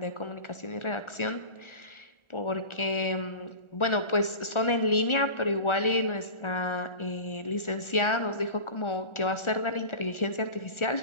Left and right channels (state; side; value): late; right; 1.4 ms